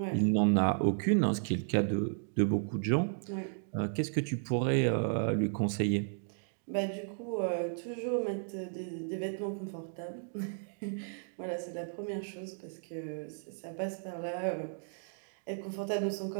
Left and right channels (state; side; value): silent; left; digital silence